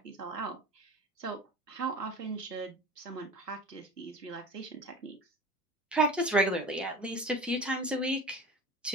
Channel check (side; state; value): both; normal; correlation 0.36